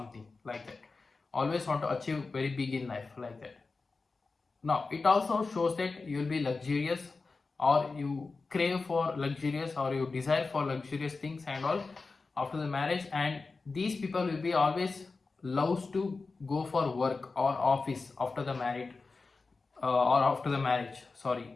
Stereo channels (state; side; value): quieter; right; 4.0 dB